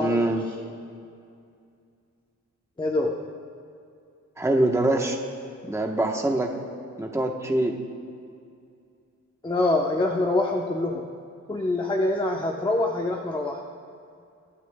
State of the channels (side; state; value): both; normal; correlation 0.68